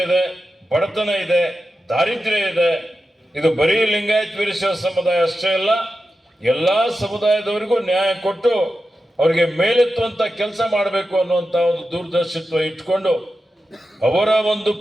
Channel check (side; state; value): both; normal; correlation 0.91